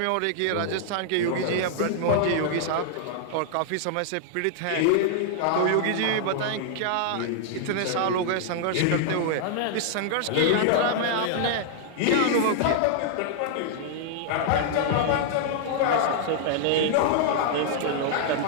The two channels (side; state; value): both; different; correlation -0.01